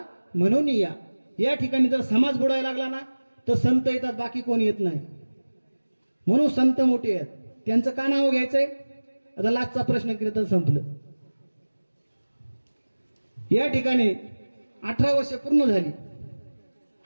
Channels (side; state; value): both; inverted; correlation -1.00